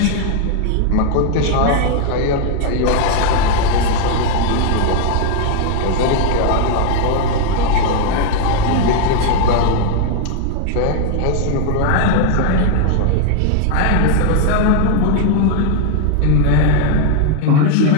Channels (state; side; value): different; both; correlation 0.00